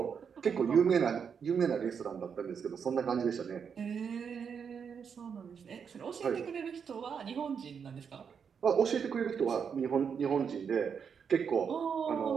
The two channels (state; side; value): quieter; left; 6.8 dB